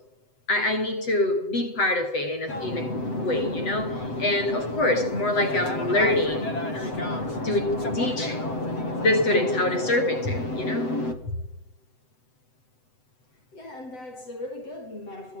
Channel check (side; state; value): right; late; 7.9 ms